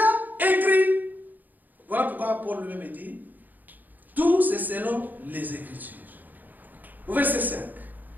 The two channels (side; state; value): left; late; 0.085 ms